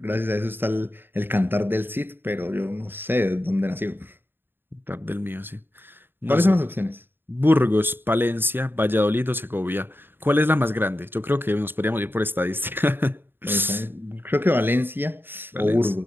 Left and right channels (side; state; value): left; late; 0.099 ms